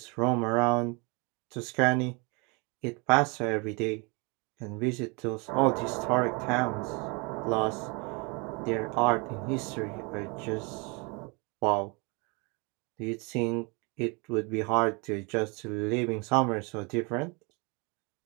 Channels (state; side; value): quieter; left; 30.4 dB